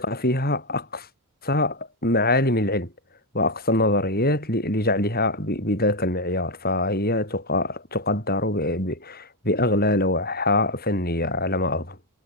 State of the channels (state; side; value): normal; both; correlation 0.05